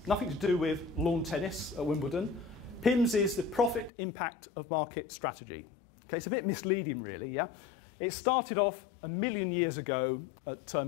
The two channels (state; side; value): drops out; right; at 3.9 s